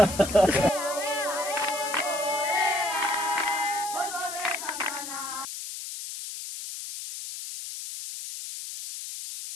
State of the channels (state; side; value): noise; left; hiss, 8 dB below the sound